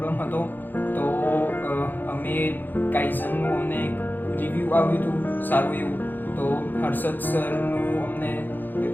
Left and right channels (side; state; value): right; late; 0.089 ms